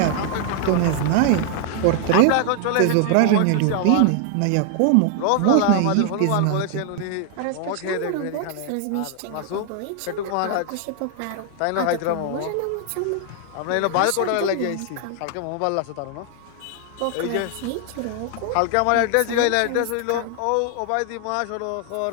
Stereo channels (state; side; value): different; both; correlation 0.00